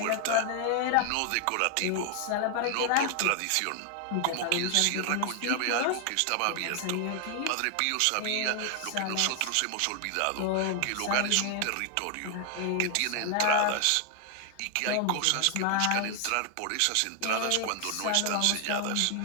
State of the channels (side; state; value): both; different; correlation 0.00